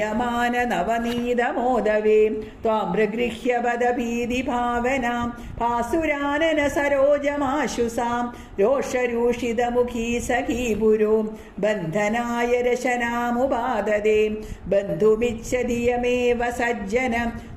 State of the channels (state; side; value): identical; both; correlation 1.00